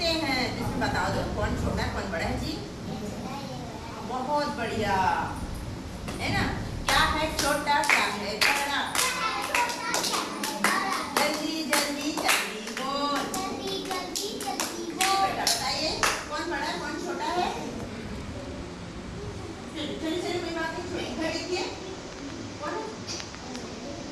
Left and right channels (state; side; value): identical; both; correlation 1.00